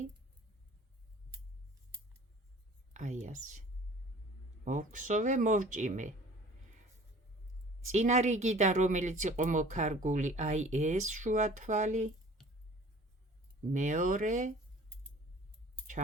აი ასე. მოვქსოვე, მოვჭიმე. წინა რიგიდან, რომელიც იყო მოკარგული, აი ეს შუა თვალი. მეორე,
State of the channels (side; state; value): both; normal; correlation 0.48